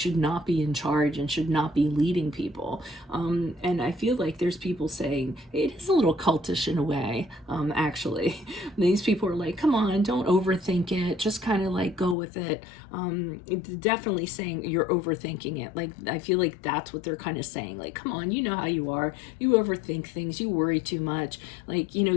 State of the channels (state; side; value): drops out; right; at 12.2 s